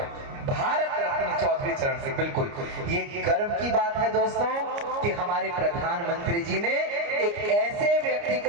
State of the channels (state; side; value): late; left; 29 ms